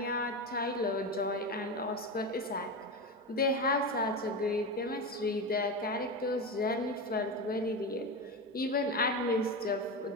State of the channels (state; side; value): normal; both; correlation 0.19